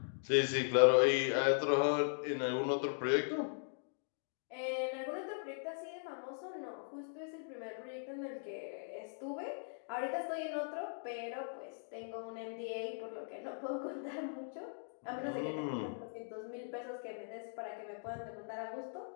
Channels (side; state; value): right; silent; digital silence